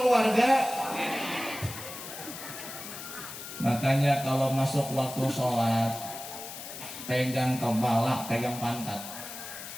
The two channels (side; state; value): left; noise; hiss, 10 dB below the sound